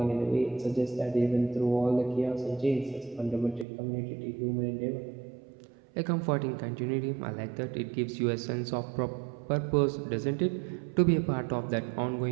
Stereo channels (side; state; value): left; drops out; at 3.7 s